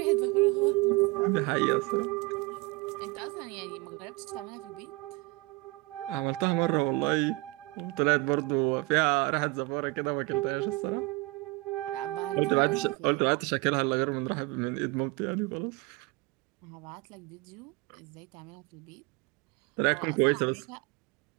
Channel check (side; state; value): left; quieter; 23.3 dB